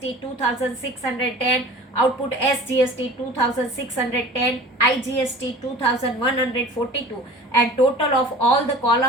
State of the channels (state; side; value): normal; both; correlation 0.42